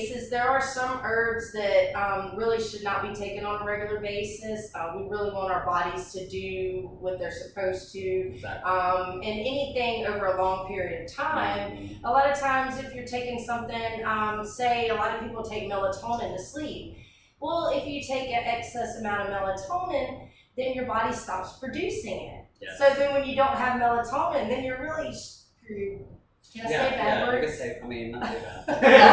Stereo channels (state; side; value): identical; both; correlation 1.00